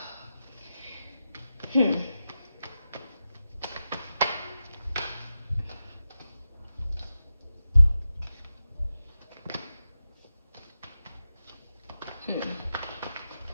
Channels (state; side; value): inverted; both; correlation -0.91